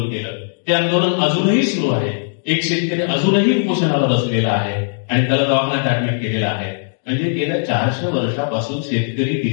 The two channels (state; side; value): silent; right; digital silence